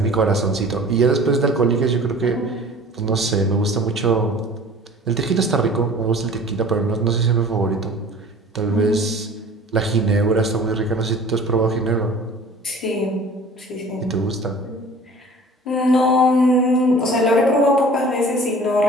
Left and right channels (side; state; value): both; normal; correlation 0.45